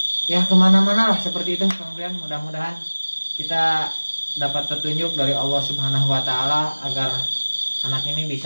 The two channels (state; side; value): inverted; both; correlation -1.00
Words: ya kemana-mana lah seperti itu Kang Brian. Mudah-mudahan kita dapat petunjuk dari Allah Subhanahu wa taala agar anak ini